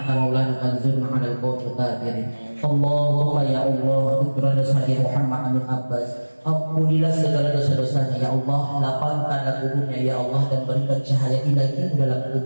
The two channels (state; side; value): inverted; both; correlation -1.00